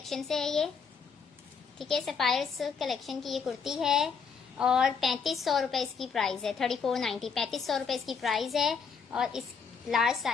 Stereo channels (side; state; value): right; quieter; 5.9 dB